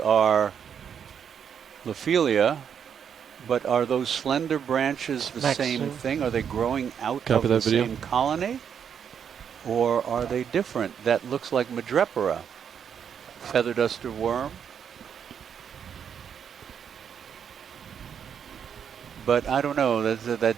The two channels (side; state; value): left; quieter; 7.8 dB